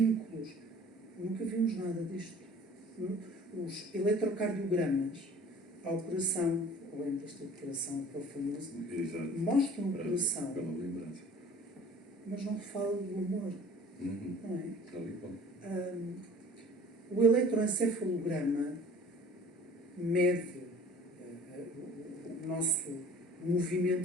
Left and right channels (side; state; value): both; normal; correlation 0.48